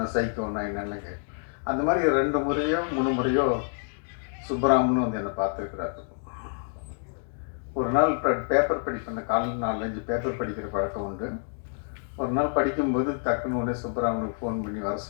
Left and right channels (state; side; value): silent; right; 60 dB below the other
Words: சைக்கோன்னா என்னென்னு கேட்க. அந்த மாதிரி 2 முறையோ 3 முறையோ சுப்பராமன் வந்து என்னை பார்த்துருக்குறாரு. ஒரு நாள் பேப்பர் படிப்பேன். காலையில் 4-5 பேப்பர் படிக்கிற பழக்கம் உண்டு. ஒரு நாள் படிக்கும்போது டக்குன்னு உடனே சுப்பராமனுக்கு ஃபோன் பண்ணி வர